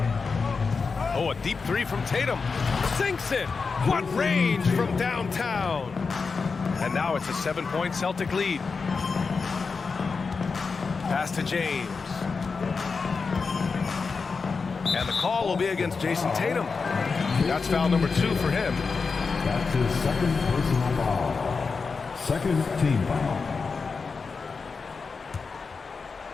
Oh, a deep 3 from Tatum. Sinks it. What range from downtown. And now it's a 7-point Celtic lead. Pass to James. And the call will be against Jason Tatum. That's foul number 2 for him. That's his 2nd personal foul. 2nd team foul.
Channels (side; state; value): right; quieter; 4.8 dB